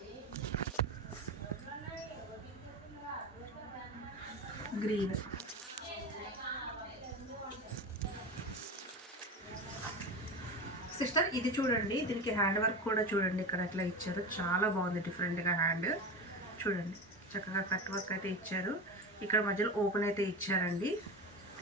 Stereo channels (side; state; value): both; normal; correlation 0.25